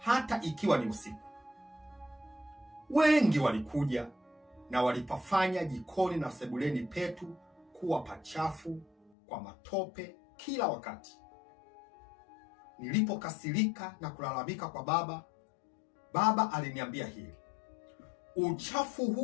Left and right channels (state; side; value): drops out; right; at 9.1 s